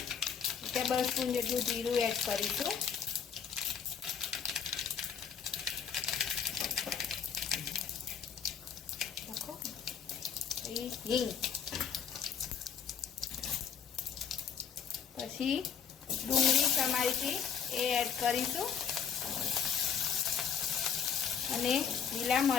ટેબલસ્પૂન જેટલું જીરું એડ કરીશું. હિંગ, પછી ડુંગળી સમારીથી એ એડ કરીશું અને લીલા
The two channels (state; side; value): quieter; right; 7.4 dB